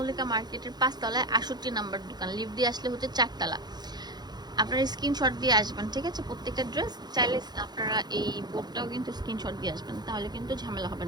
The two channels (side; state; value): left; late; 0.20 ms